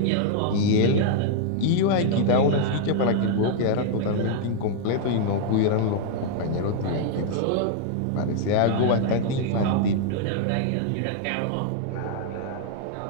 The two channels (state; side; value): different; both; correlation -0.01